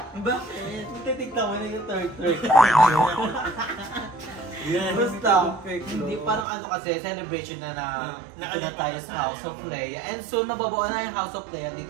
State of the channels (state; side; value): drops out; left; at 6.5 s